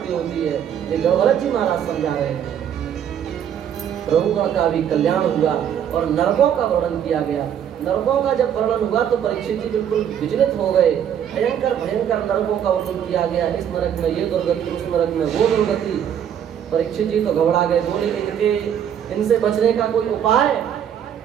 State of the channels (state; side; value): quieter; left; 9.2 dB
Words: होती है। ये गौरव जी महाराज समझा रहे हैं। प्रभुगण का भी कल्याण हुआ और नरकों का वर्णन किया गया। नरकों का जब वर्णन हुआ तो परीक्षित जी बिल्कुल विचलित हो गए। भयंकर भयंकर नरकों का वर्णन किया गया। इस नरक में ये दुर्गति, उस नरक में वो दुर्गति। परीक्षित जी तो घबरा गए, बोले इनसे बचने का कोई उपाय?